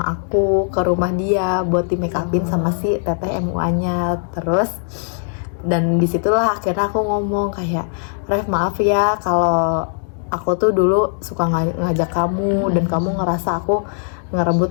aku ke rumah dia buat di make upin sama si teteh MUA-nya. Terus dan disitulah akhirnya aku ngomong kayak, Rev maaf ya kalau aku tuh dulu suka ngajak kamu dan kamu ngerasa aku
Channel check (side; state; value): right; silent; digital silence